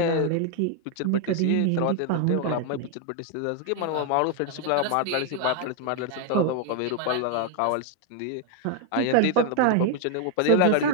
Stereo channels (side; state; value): both; different; correlation 0.01